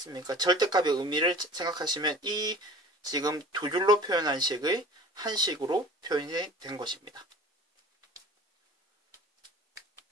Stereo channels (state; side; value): normal; both; correlation 0.42